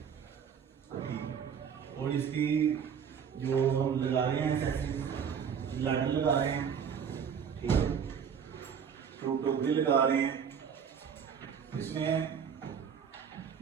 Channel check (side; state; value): left; quieter; 7.4 dB